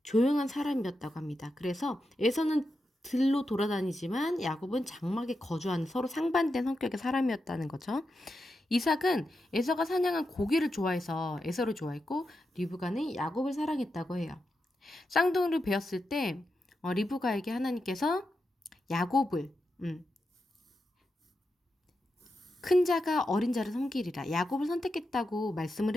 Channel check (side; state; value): both; normal; correlation 0.88